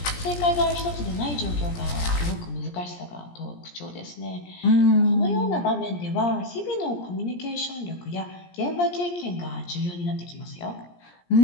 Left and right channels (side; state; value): right; late; 17 ms